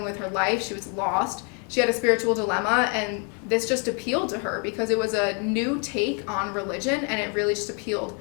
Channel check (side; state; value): right; quieter; 37.0 dB